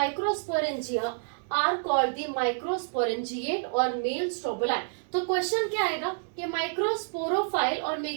are called the microsporangiate और मेल स्ट्रोबोलाई। तो क्वेश्चन क्या आएगा कि माइक्रोस्पोरोफाइल और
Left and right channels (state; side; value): silent; left; digital silence